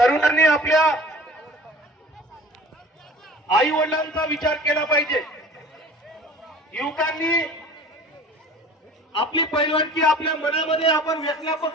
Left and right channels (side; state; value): both; normal; correlation 0.44